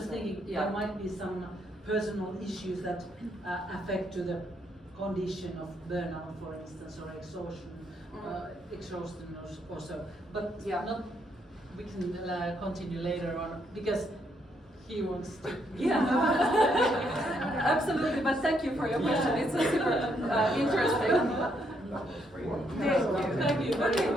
thinking there might be some personal issues that affect to the condition of burnout, for instance, or exhaustion or so. But not. We can continue later on because he wants to. Yeah, absolutely. But thank you for your question. It's a super interesting. Thank you. Thank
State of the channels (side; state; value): both; normal; correlation 0.74